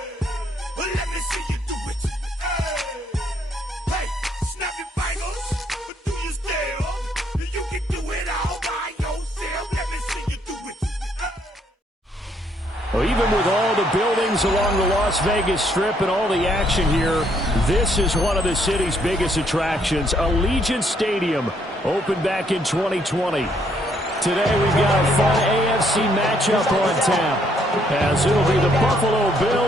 Let me see you do it. Hey, snap your fingers, but do you still? You can do it all by yourself. Let me see you do it. Well, even with all the buildings along the Las Vegas Strip and all the action here, this is one of the city's biggest attractions. Allegiant Stadium opened back in 2020. Today we've got a fun AFC matchup on tap, as it'll be the Buffalo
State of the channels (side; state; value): both; normal; correlation 0.70